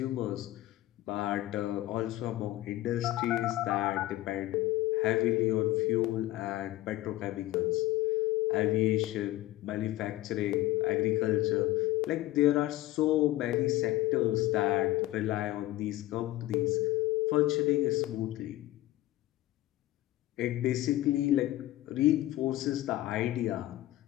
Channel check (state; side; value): quieter; right; 16.0 dB